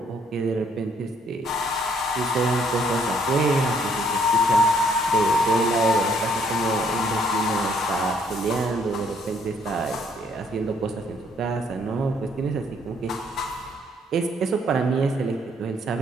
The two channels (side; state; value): both; normal; correlation 0.66